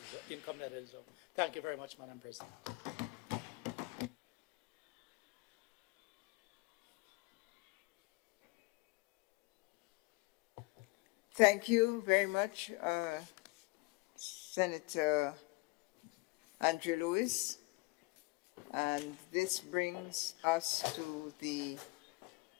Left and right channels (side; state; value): right; quieter; 24.7 dB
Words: income that is. Thank you very much, Madam President. Thank you very much, Senator Andrew Lewis. And this brings us to the